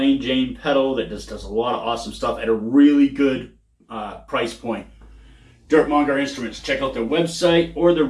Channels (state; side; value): identical; both; correlation 1.00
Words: Jane pedal that just does a lot of awesome stuff at a really good price point. Monger Instruments. Check out their website or the